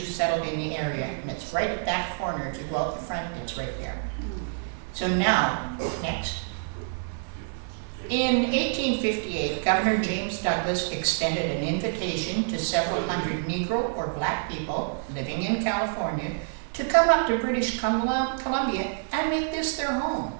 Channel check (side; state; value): left; silent; 60 dB below the other